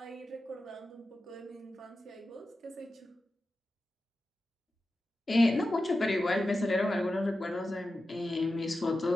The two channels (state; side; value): normal; both; correlation 0.92